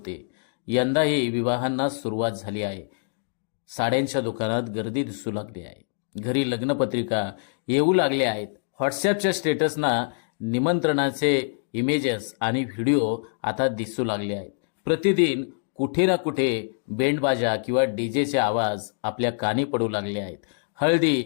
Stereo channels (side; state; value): right; silent; digital silence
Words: यंदाही विवाहांना सुरुवात झाली आहे. साड्यांच्या दुकानात गर्दी दिसू लागली आहे. घरी लग्नपत्रिका येऊ लागल्या आहेत. व्हॉट्सॲपच्या स्टेटसना निमंत्रणाचे इमेजेस आणि व्हिडिओ आता दिसू लागले आहेत. प्रतिदिन कुठे ना कुठे बेंडबाजा किंवा डीजेचे आवाज आपल्या कानी पडू लागले आहेत.